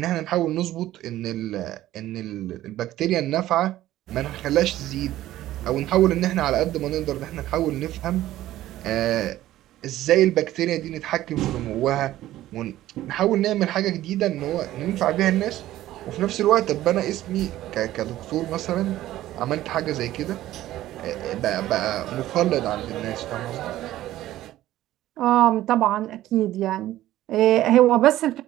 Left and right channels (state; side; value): quieter; left; 14.5 dB